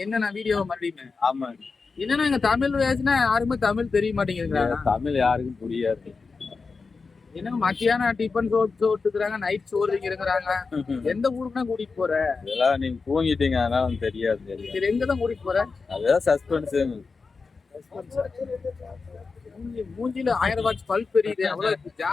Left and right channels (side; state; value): right; quieter; 4.5 dB